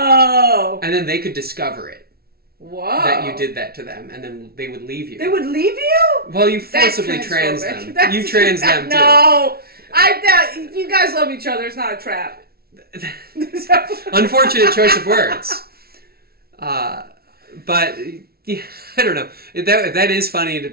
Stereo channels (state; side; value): late; left; 0.44 ms